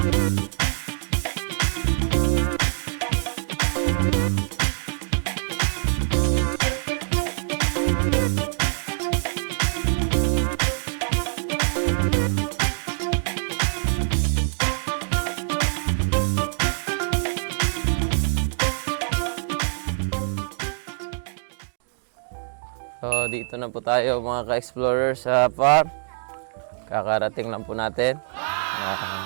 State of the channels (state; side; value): silent; left; digital silence